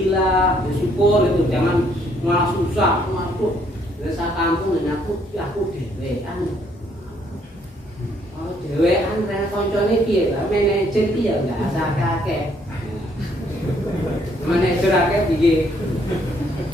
bersyukur itu, jangan malah susah, waduh desa kampung dan aku dewean. Oh dewean rene koncone piye lah manajer piye enggak asal kakek. Manajer akeh piye.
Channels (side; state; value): both; normal; correlation 0.67